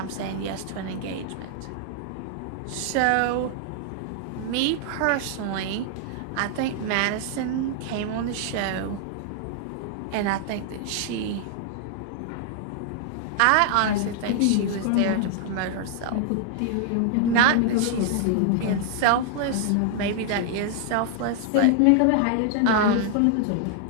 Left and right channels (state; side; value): different; both; correlation 0.00